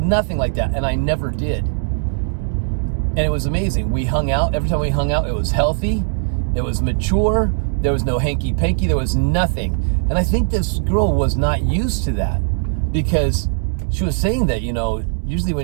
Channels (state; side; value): silent; left; digital silence